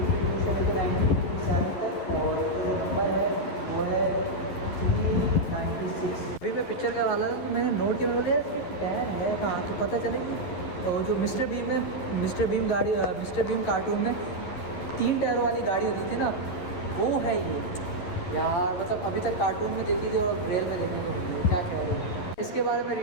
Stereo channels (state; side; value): late; right; 11 ms